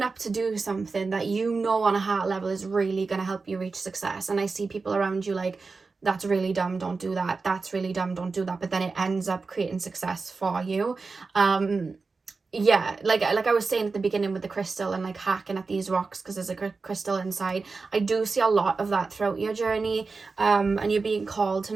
up to do something that you know on a heart level is really going to help you reach success. And I see people around you like, that's really dumb, don't do that. That's really dumb, don't do that. But then it ends up creating success for you. Yeah, like I was saying at the beginning with the crystal and like hacking at these rocks because there's a crystal inside. I do see a lot of that throughout your journey, and you're being called to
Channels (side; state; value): left; quieter; 4.2 dB